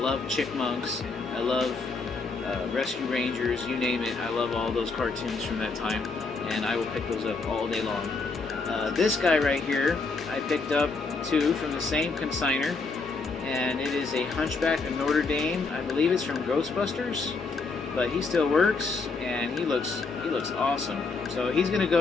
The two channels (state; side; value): quieter; right; 4.1 dB